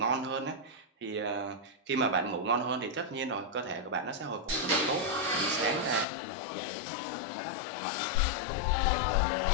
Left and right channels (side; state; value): right; drops out; at 6.1 s